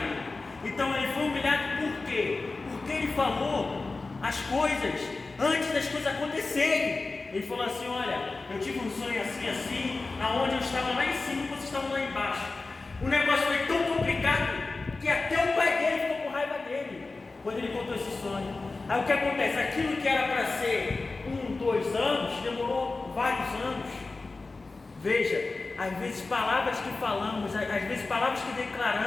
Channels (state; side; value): quieter; right; 3.6 dB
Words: Então ele foi humilhado por quê? Porque ele falou as coisas antes das coisas acontecerem. Ele falou assim, olha, eu tive um sonho assim, assim, aonde eu estava lá em cima e vocês estavam lá embaixo. O negócio foi tão complicado que até o pai dele ficou com raiva dele quando ele contou esse sonho. Aí o que acontece? Aquilo que era para ser 1, 2 anos, demorou vários anos. Veja, às vezes palavras que falamos, às vezes palavras que